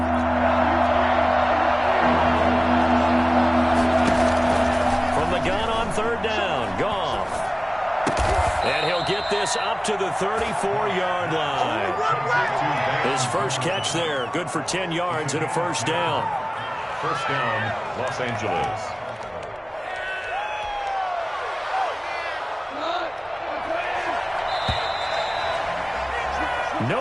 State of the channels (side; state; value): both; identical; correlation 1.00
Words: From the gun on 3rd down, Goff. And he'll get this up to the 34-yard line. His first catch there, good for 10 yards and a first down. First down, Los Angeles.